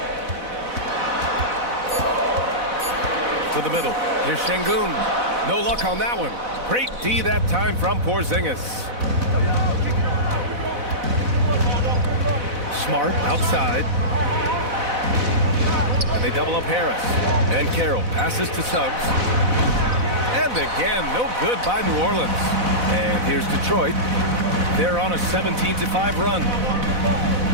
To the middle. Here's Şengün. No luck on that one. Great D that time from Porzingis. Smart outside. And they double up Harris. And Carroll passes to Suggs. And again, no good by New Orleans. And here's Detroit. They're on a 17-5 run.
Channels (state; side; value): late; left; 4.0 ms